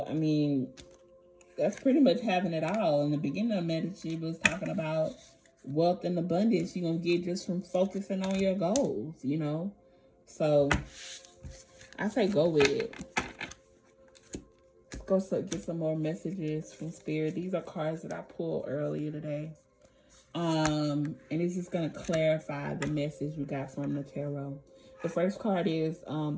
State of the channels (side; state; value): both; identical; correlation 1.00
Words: I mean, that's pretty much having it all. In the beginning of Medici was talking about wealth and abundance you're going to get just from focusing on your goals, So, I say go with it. Let's go get some more messages from Spirit. These are cards that I pulled earlier today. And it's just going to clarify the message we got from the tarot. The first card is